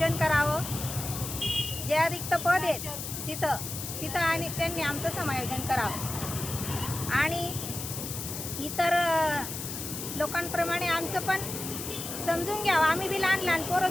करावं. ज्या रिक्त पद आहेत तिथं आणि त्यांनी आमचं समायोजन करावं आणि इतर लोकांप्रमाणे आमचं पण समजून घ्यावं. आम्ही बी लहान लहान पोरं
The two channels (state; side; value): noise; left; hiss, 7 dB below the sound